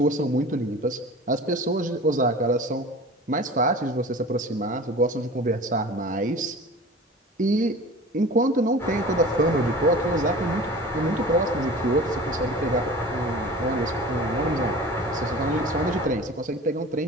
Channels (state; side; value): normal; both; correlation 0.39